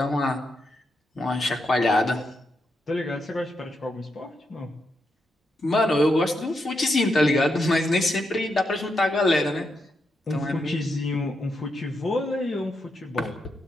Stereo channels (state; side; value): normal; both; correlation 0.83